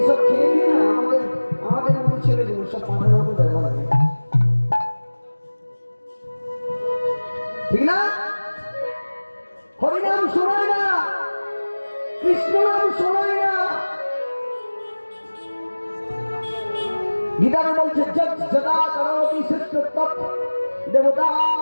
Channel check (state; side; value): inverted; both; correlation -1.00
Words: এসব খেয়ে দিয়ে না আমাদের মতো ছেলেগুলো সব পাখার মতো ব্যবহার করে, ঠিক না? হরিনাম শোনায় না, কৃষ্ণ নাম শোনায় না। গীতাতে বলছে যদা করোতি শ্রেষ্ঠ তৎ দেবতা